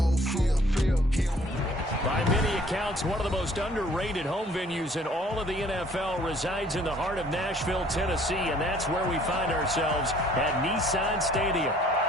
field. By many accounts, one of the most underrated home venues in all of the NFL resides in the heart of Nashville, Tennessee, and that's where we find ourselves at Nissan Stadium.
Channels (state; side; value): normal; both; correlation 0.58